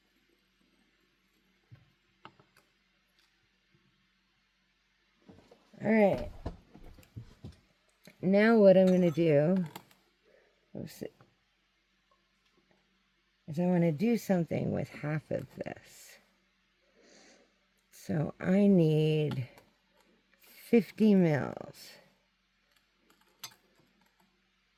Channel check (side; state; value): both; identical; correlation 1.00